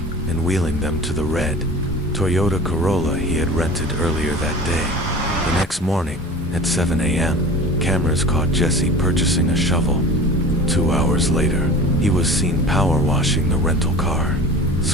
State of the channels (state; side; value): normal; both; correlation 0.38